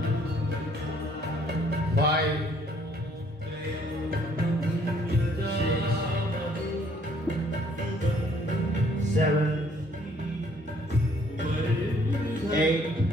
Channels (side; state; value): both; normal; correlation 0.63